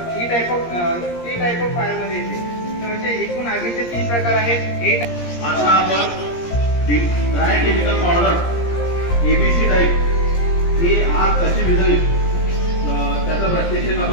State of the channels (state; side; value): late; right; 17 ms